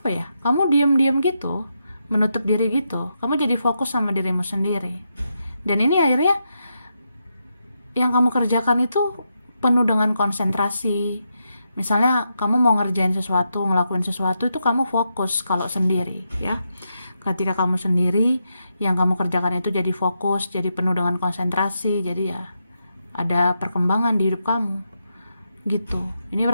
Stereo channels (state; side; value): inverted; both; correlation -0.84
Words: ya? Kamu diam-diam gitu, menutup diri gitu. Kamu jadi fokus sama dirimu sendiri. Dan ini akhirnya yang kamu kerjakan itu penuh dengan konsentrasi. Misalnya kamu mau ngerjain sesuatu, ngelakuin sesuatu, itu kamu fokus kalau sendiri ya. Ketika kamu sendiri, yang kamu kerjakan itu jadi fokus, jadi penuh dengan konsentrasi, jadi ya ada perkembangan di hidup kamu gitu. Ini